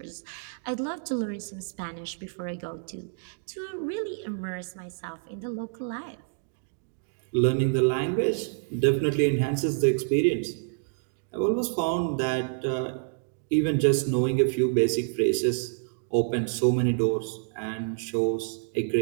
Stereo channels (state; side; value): silent; left; digital silence